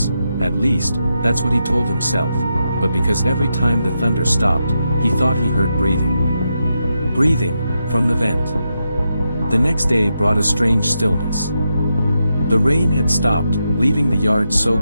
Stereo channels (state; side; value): inverted; both; correlation -0.85